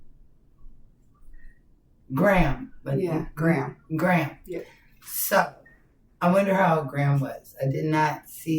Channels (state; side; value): identical; both; correlation 1.00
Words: Graham. Graham. Yeah. So, I wonder how Graham was. I did not